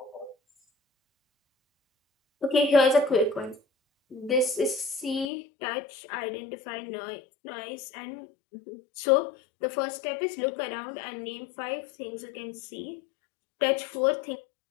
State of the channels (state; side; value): drops out; right; at 5.2 s